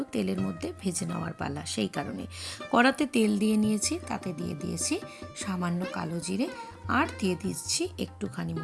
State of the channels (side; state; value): both; identical; correlation 1.00